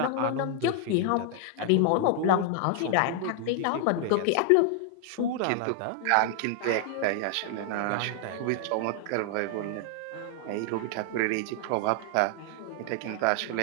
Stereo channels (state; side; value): different; both; correlation 0.00